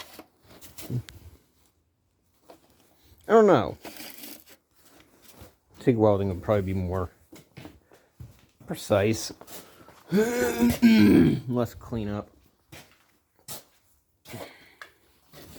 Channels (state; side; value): identical; both; correlation 1.00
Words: I don't know. TIG welding would probably be more precise. Less cleanup.